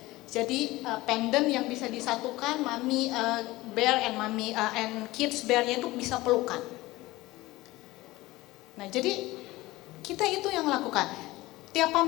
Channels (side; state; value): right; quieter; 19.2 dB